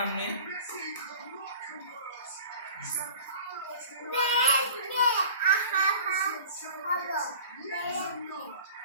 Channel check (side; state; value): both; inverted; correlation -0.42